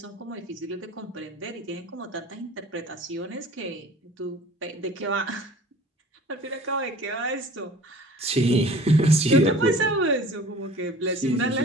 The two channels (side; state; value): both; normal; correlation 0.46